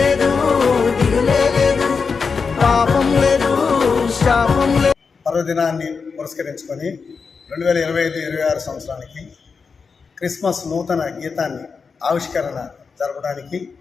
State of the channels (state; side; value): quieter; right; 5.2 dB